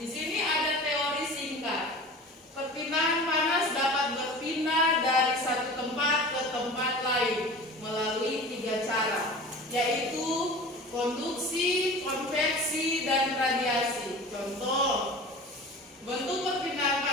sini ada teori singkat. Perpindahan panas dapat berpindah dari satu tempat ke tempat lain melalui 3 cara, yaitu konduksi, konveksi, dan radiasi. Contoh, bentuk perpindahan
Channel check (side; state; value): both; normal; correlation 0.37